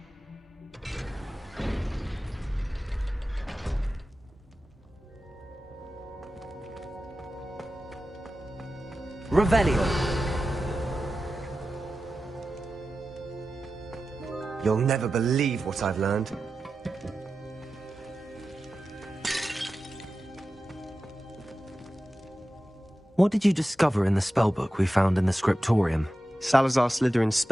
Revelio. You'll never believe what I've learned. What did you discover in the spellbook we found in the scriptorium? Salazar Slytherin's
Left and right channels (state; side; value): normal; both; correlation 0.93